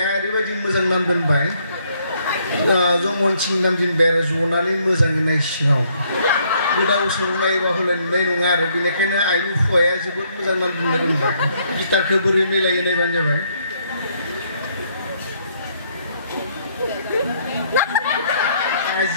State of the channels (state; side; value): inverted; both; correlation -0.69